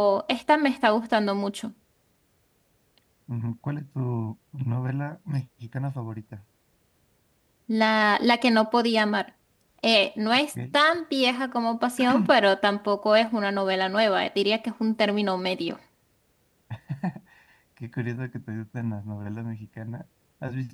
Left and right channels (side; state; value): both; identical; correlation 1.00